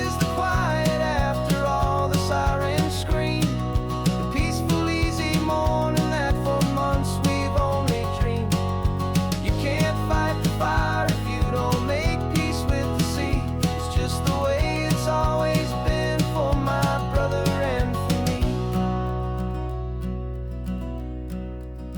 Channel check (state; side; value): identical; both; correlation 1.00